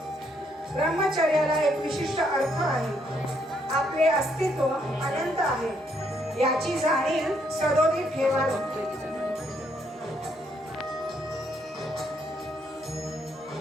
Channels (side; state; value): both; normal; correlation 0.72